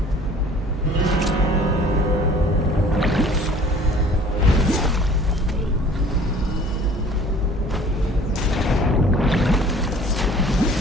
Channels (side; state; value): both; normal; correlation 0.50